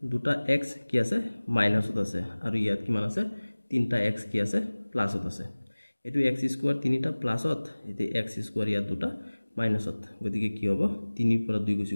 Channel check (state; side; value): inverted; both; correlation -1.00